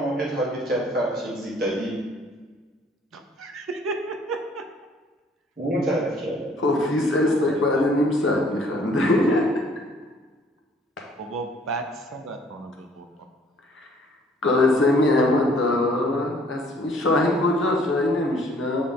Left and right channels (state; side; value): normal; both; correlation 0.59